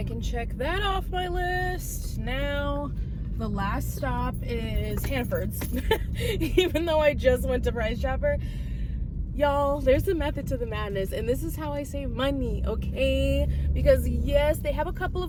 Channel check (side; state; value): both; identical; correlation 1.00